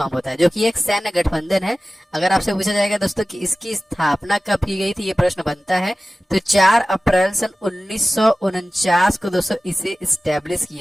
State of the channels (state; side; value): normal; both; correlation 0.96